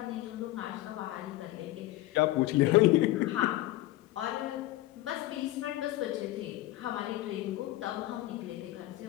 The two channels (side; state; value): right; quieter; 16.5 dB